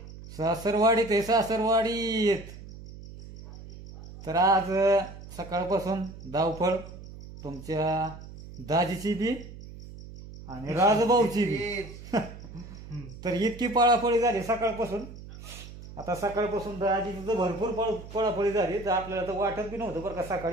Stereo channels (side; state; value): right; noise; hum, 15 dB below the sound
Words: सासरवाडीत आहे, सासरवाडीत. तर आज सकाळपासून धावपळ तुमच्या दाजीची बी आणि राजभाऊची बी. तर इतकी पळापळी झाली सकाळपासून. आता सकाळपासून दाजीची तर भरपूर पळापळी झाली. तर आपल्याला तर वाटत बी नव्हतं बरं का